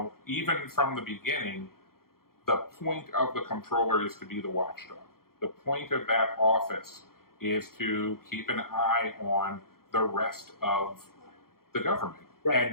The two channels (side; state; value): right; late; 0.93 ms